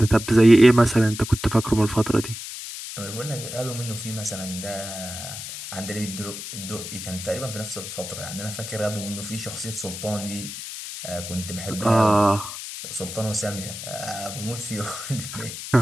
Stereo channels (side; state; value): left; noise; hiss, 9 dB below the sound